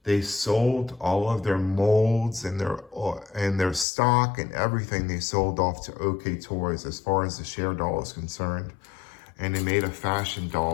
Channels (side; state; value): right; drops out; at 3.9 s